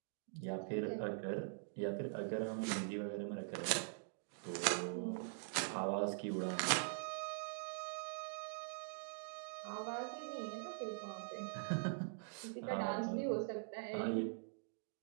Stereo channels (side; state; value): left; silent; digital silence